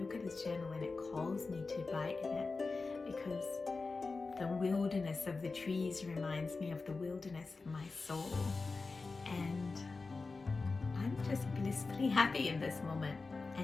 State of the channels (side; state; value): right; quieter; 4.0 dB